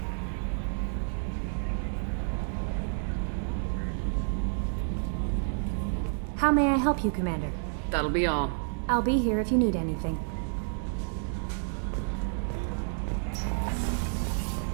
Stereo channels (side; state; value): left; silent; digital silence